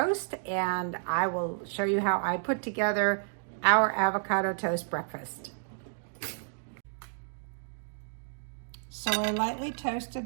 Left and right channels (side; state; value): left; silent; digital silence